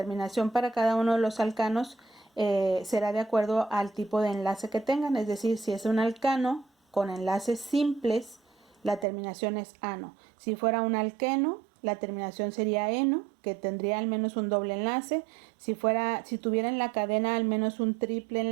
para cada uno de los alcanos será de acuerdo al tipo de enlace que tengan. Es decir, si es un alcano con enlaces simples, la terminación es ano. Si fuera un alqueno, la terminación sería eno, que tendría al menos un doble enlace. Si tuviera en la cadena al menos un triple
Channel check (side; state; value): left; drops out; at 9.1 s